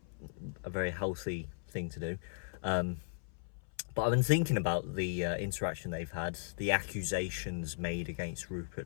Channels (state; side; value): silent; right; 53 dB below the other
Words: a very healthy thing to do. But I've been thinking about the interaction they've had, the accusations made against